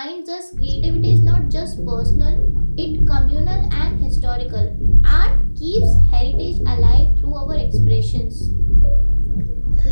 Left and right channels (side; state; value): both; inverted; correlation -1.00